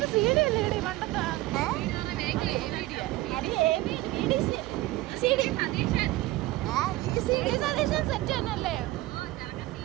CD അല്ലേ ഇടി പണ്ടത്തെ?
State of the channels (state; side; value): quieter; left; 17.9 dB